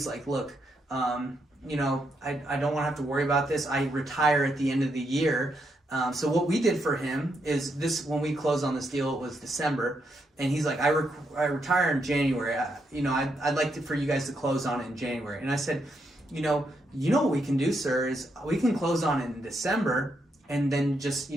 like, look, you know, I don't want to have to worry about this. I retire at the end of the year. So what we did for him is this: when we closed on this deal, it was December. And he's like, I retire in January. You know, I'd like for you guys to close on it in January. And I said, you know what we can do, sir, is we can close on it in December, and then just,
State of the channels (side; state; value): both; normal; correlation 0.79